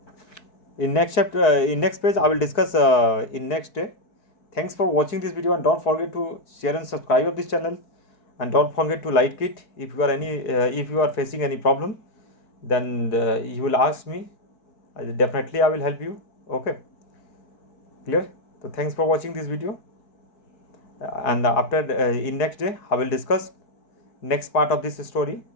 in next chapter, in next page, I will discuss in next day. Thanks for watching this video, and don't forget to share and subscribe of this channel, and don't forget to like it. If you are facing any problem, then you will ask me. Definitely I will help you. Okay, clear? So thanks for watching this video, and after in next day I will discuss next part of this story.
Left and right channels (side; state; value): right; late; 4.6 ms